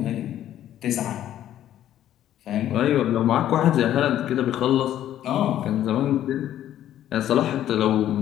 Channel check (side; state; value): right; quieter; 11.8 dB